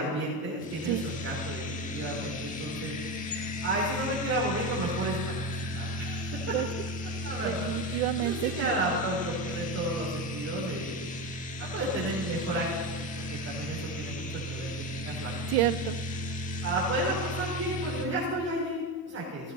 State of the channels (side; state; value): both; normal; correlation 0.19